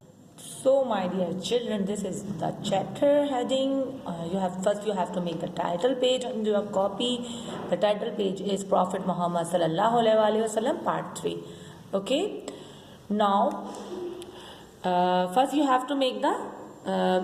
So my dear children, this is the chapter heading. You have to make the title page on your copy. The title page is Prophet Muhammad sallallahu alaihi wasallam part 3. Okay. Now first you have to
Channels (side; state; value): both; identical; correlation 1.00